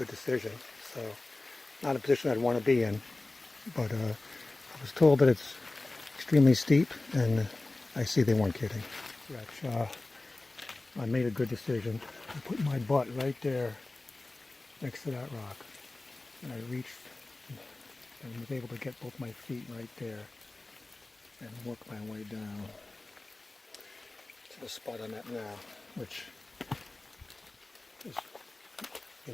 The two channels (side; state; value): right; quieter; 3.0 dB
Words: decision. So not a position I'd want to be in, but I was told that it's extremely steep, and I see they weren't kidding. I made a good decision. I put my butt right there next to that rock, and I reached and was able to get both my feet right there and work my way down to the spot I'm at now, which is,